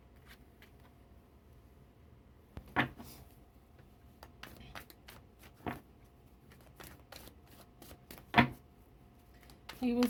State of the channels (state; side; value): identical; both; correlation 1.00